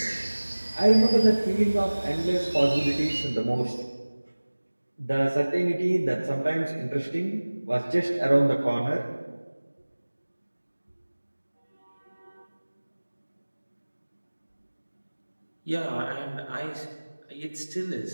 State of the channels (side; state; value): both; inverted; correlation -1.00